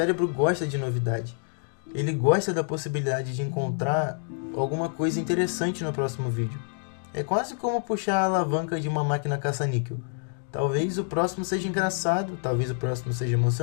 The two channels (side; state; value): right; silent; 59 dB below the other